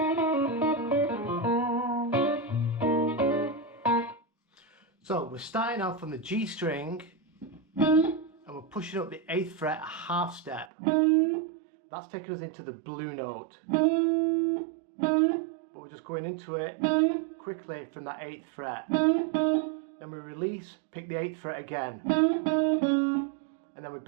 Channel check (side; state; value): left; drops out; at 10.7 s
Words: So we're starting off on the G string and we're pushing up the 8th fret a half step. That's taking us into the blue note. But we're just going into it quickly from that 8th fret. Then we release, pick the 8th fret again. And then we